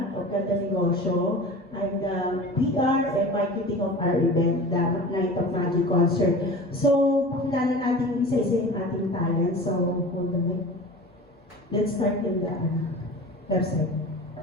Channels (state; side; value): normal; both; correlation 0.36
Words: of Ganda Negosyo. I'm the PR and marketing of our event, the Night of Magic Concert. So, pakilala natin isa-isa yung ating talent. So, hold on wait. Let's start in the website.